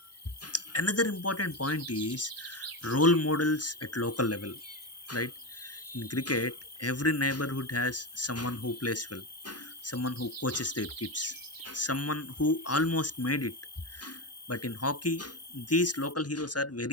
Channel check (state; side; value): normal; both; correlation 0.16